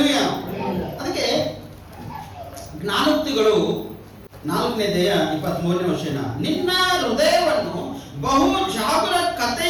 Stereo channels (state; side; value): identical; both; correlation 1.00